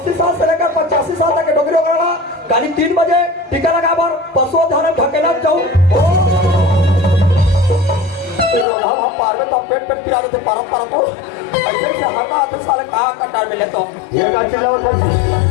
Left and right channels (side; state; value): right; drops out; at 8.7 s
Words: साल से लेकर 85 साल तक के डोगरी वगैरह गाड़ी 3 बजे टीका लगा बार पशु धारण ढकेला जाओ हम पार में तो पेट पिला देते परत को ऐसे से हटा तो साले कहां कटार में ले तो ये का चिल्लाओ